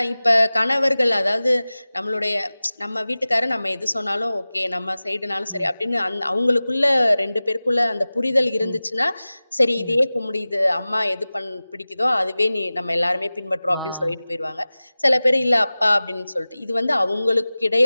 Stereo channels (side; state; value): both; inverted; correlation -0.97